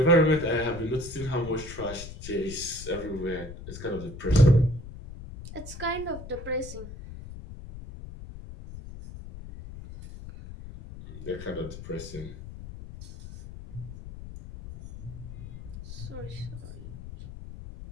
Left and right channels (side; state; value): left; noise; rumble, 12 dB below the sound